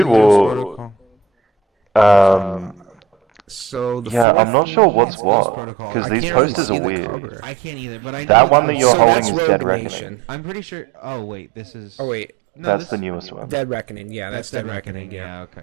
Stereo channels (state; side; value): drops out; left; at 4.2 s